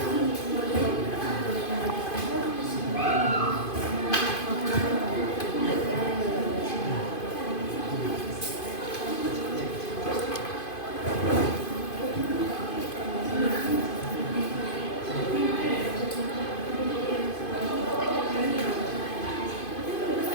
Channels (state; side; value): late; right; 2.5 ms